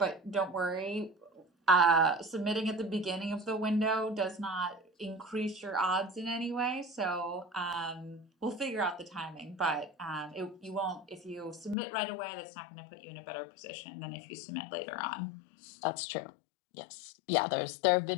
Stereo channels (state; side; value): drops out; right; at 11.8 s